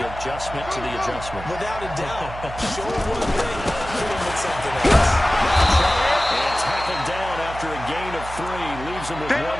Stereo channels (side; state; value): right; noise; hum, 12 dB below the sound